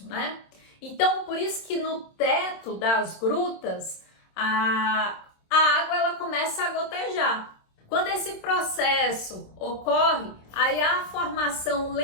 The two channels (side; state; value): right; late; 26 ms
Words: né? Então, por isso que no teto das grutas, a água ela começa a gotejar. Quando esse processo ocorre, aí há a formação